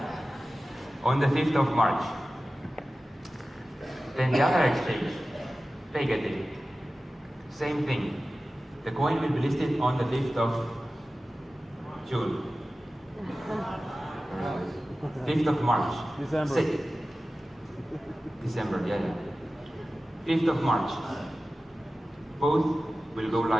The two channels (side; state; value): both; normal; correlation 0.95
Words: On the 5th of March. Then the other exchange, DAGCoin. Same thing. The coin will be listed on the 5th of June. 5th of March. December. December, yeah. 5th of March. Both will go